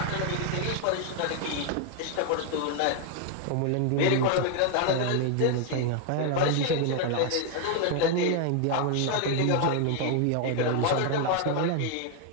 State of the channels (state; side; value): different; both; correlation 0.00